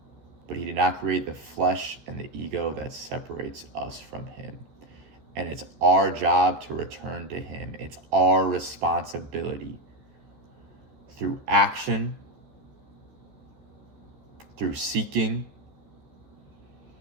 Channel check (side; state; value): left; late; 14 ms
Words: But he did not create the flesh and the ego that separates us from him. And it's our job to return to him. It's our responsibility. Through action, through seeking,